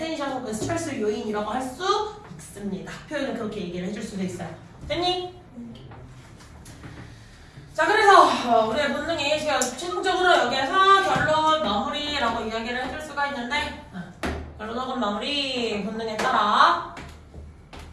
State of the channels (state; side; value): identical; both; correlation 1.00